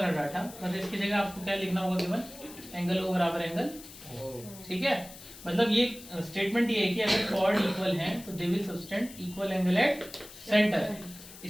डाटा, बस इसकी जगह आपको क्या लिखना होगा? गिवन एंगल ओ बराबर एंगल, ठीक है? मतलब ये स्टेटमेंट ये है कि अगर कॉर्ड इक्वल हैं तो they will subtend equal angle at centre.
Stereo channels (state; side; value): noise; left; hiss, 17 dB below the sound